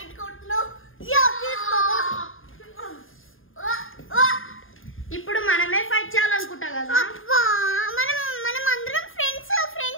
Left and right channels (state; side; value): late; right; 0.59 ms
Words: ఇప్పుడు మనమే ఫైట్ చేయాలనుకుంటా కదా. మనం అందరం ఫ్రెండ్స్